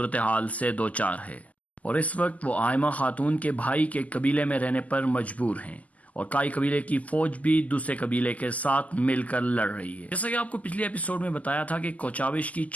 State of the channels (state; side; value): late; right; 0.074 ms